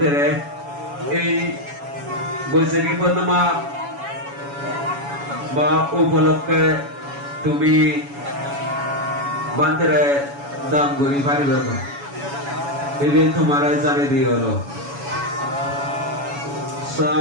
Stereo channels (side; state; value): left; late; 7.1 ms